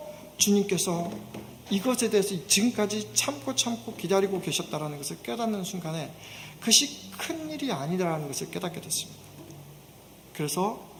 주님께서 이것에 대해서 지금까지 참고 기다리고 계셨다는 것을 깨닫는 순간에 그것이 큰 일이 아니라는 것을 깨닫게 됐습니다. 그래서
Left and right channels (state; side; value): identical; both; correlation 1.00